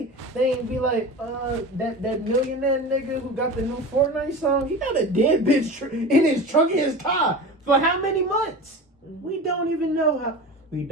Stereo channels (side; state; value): both; normal; correlation 0.31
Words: they ain't be like, that millionaire nigga who got the new Fortnite song, he got a dead bitch in his trunk in his car for how many months? We don't even know how. We